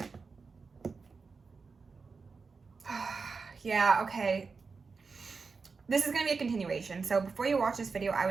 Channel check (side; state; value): left; quieter; 4.7 dB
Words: Yeah, okay. This is going to be a continuation. So before you watch this video, I